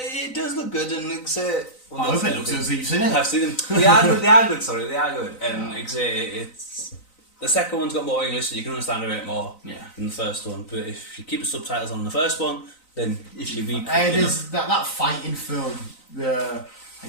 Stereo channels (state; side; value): late; right; 3.9 ms